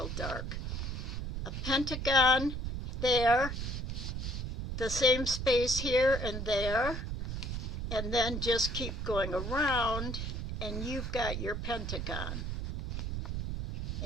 dark. A pentagon there, the same space here and there, and then just keep going around, and you've got your pentagon.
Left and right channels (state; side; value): noise; right; rumble, 4 dB below the sound